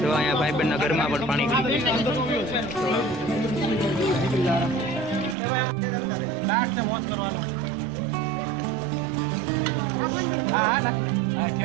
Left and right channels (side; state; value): left; drops out; at 5.4 s